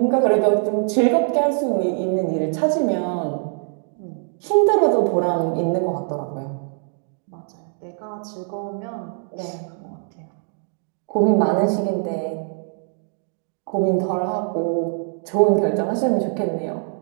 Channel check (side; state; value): left; silent; 56 dB below the other